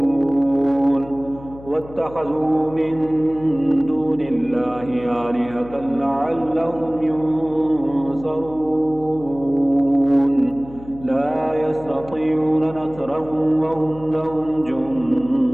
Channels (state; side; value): noise; left; hum, 18 dB below the sound